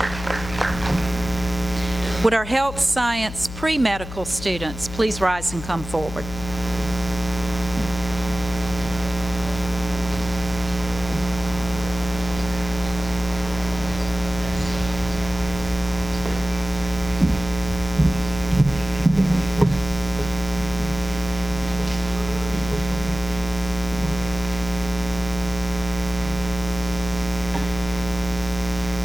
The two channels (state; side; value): noise; left; hum, 10 dB below the sound